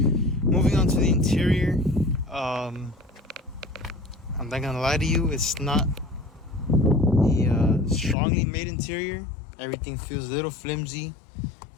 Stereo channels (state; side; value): drops out; right; at 8.2 s